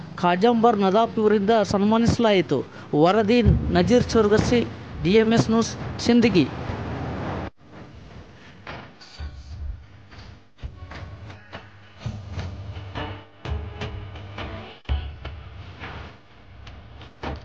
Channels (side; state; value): both; identical; correlation 1.00